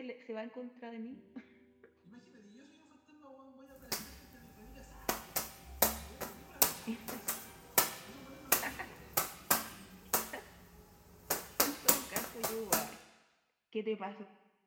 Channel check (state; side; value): identical; both; correlation 1.00